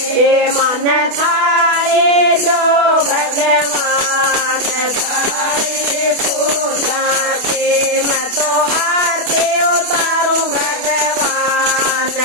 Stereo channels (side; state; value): left; late; 28 ms